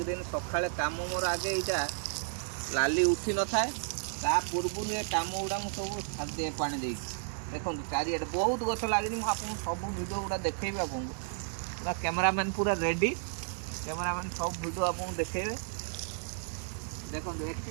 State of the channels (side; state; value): left; silent; digital silence